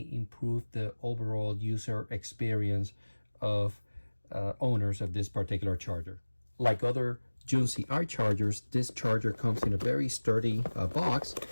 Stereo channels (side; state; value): both; inverted; correlation -1.00